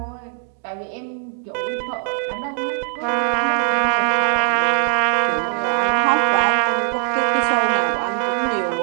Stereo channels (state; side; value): silent; left; digital silence